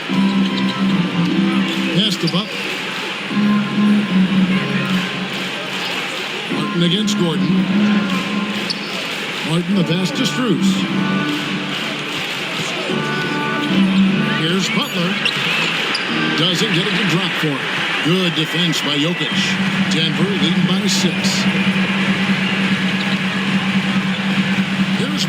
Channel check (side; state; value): both; identical; correlation 1.00